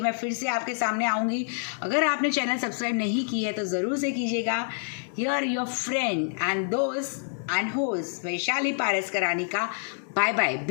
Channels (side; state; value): right; silent; 60 dB below the other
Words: फिर से आपके सामने आऊँगी। अगर आपने चैनल सब्सक्राइब नहीं की है तो ज़रूर से कीजिएगा। हियर योर फ्रेंड एंड दोस्त एंड होस्ट वैशाली पारस करानी का bye bye.